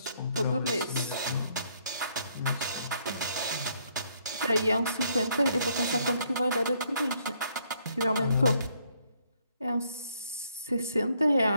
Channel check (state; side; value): inverted; both; correlation -0.69